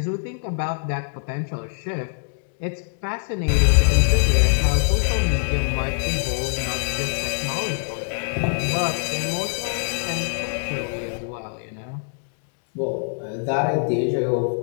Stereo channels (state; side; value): silent; right; digital silence